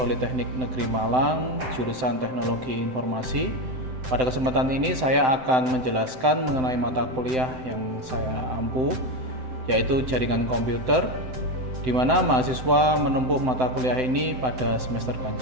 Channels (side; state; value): left; late; 7.8 ms